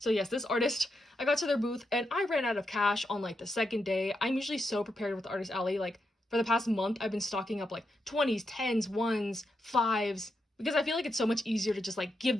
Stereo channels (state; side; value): normal; both; correlation 0.84